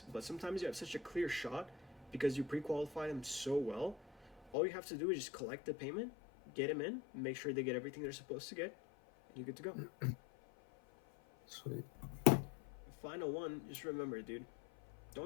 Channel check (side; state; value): right; drops out; at 4.5 s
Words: But sometimes you have such a clear shot because you pre-qualified them so well. All you have to do is just collect the payment, get them in, make sure they get everything they're supposed to get, and you're good to go. Sweet. Final one, just remember, dude,